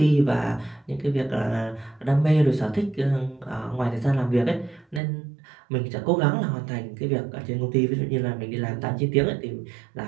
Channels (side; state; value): left; drops out; at 5.0 s